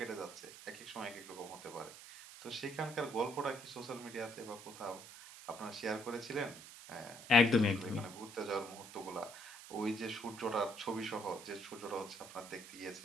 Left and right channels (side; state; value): right; noise; hiss, 15 dB below the sound